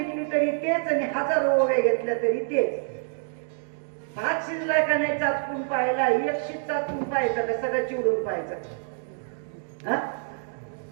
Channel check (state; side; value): silent; left; digital silence